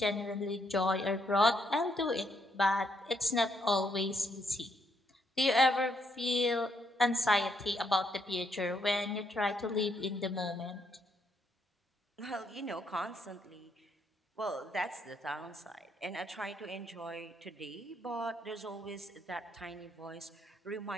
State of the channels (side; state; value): both; normal; correlation 0.74